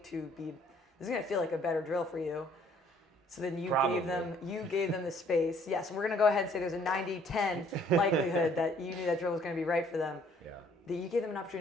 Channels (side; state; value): both; normal; correlation 0.61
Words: feel like a better drill for you. So then you gave them the space. Yes, we're gonna go ahead and say there's a 90-10 likelihood that you knew that drill was gonna be right for them. Yeah. That you gave them an